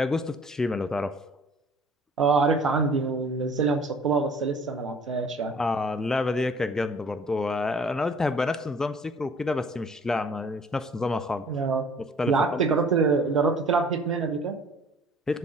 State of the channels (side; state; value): both; normal; correlation 0.52